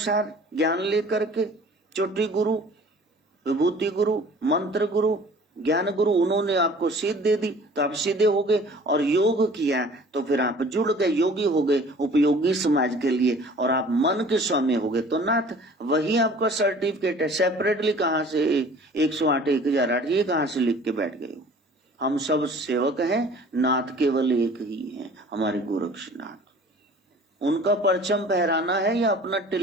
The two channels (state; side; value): normal; both; correlation 0.48